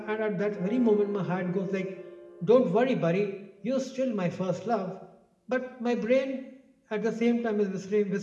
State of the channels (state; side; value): identical; both; correlation 1.00